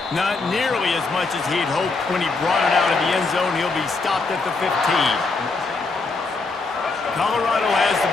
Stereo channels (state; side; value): quieter; right; 3.9 dB